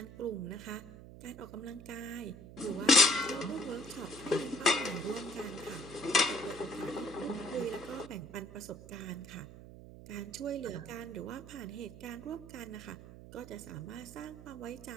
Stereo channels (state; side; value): noise; right; hum, 15 dB below the sound